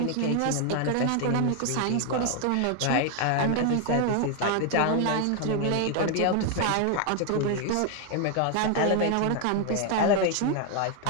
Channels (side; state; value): both; different; correlation 0.00